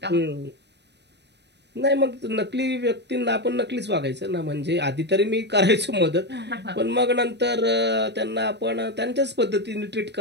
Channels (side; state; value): left; late; 0.50 ms